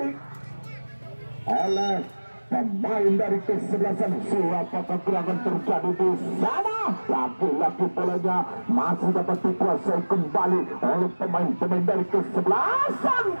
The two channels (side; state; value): both; inverted; correlation -1.00